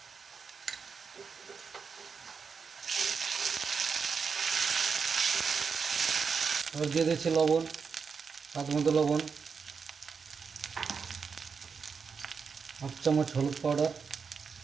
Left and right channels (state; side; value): quieter; left; 5.7 dB